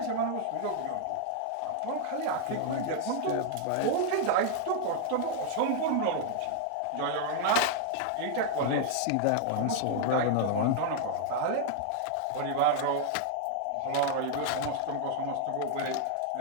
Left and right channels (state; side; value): different; both; correlation -0.01